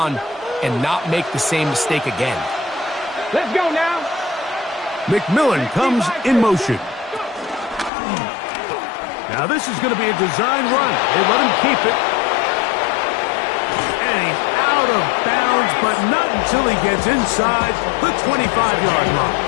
and not make the same mistake again. Let's go now. McMillan comes in motion. Now this is going to be a design run. They let him keep it. And he's out of bounds, but not until he gets inside the 25-yard line.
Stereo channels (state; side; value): drops out; right; at 7.9 s